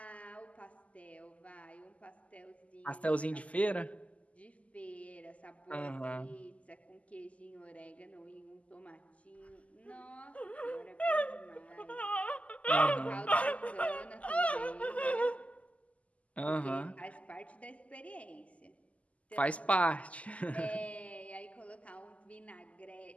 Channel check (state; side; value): late; right; 0.068 ms